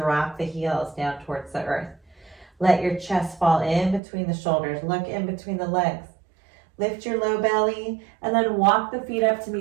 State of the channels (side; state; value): left; drops out; at 4.0 s